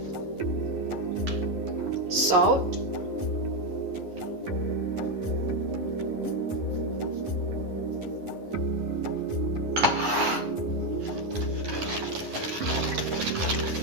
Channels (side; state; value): left; late; 11 ms